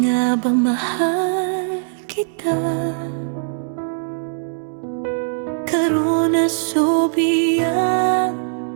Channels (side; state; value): left; silent; digital silence